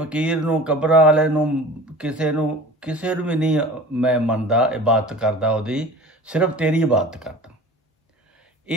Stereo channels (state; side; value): normal; both; correlation 0.39